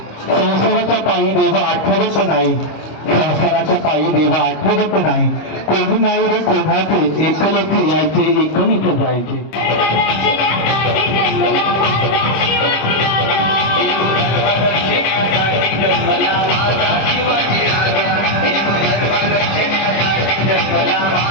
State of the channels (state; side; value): late; right; 25 ms